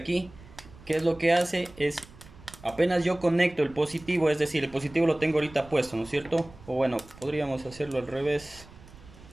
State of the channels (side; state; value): right; noise; rumble, 21 dB below the sound